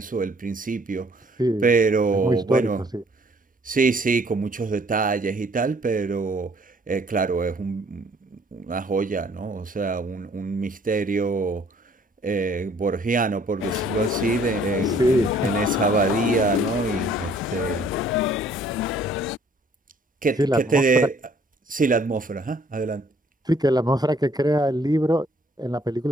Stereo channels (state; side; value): normal; both; correlation 0.60